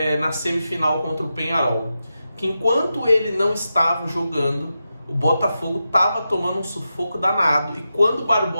na semifinal contra o Peñarol, que enquanto ele não estava jogando, o Botafogo estava tomando um sufoco danado, e quando o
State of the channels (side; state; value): both; inverted; correlation -0.90